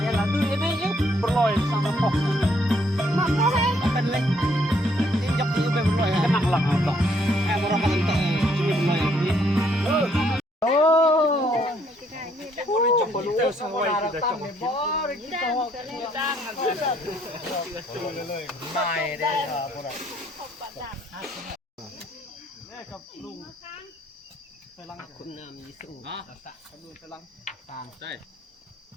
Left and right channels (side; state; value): both; normal; correlation 0.68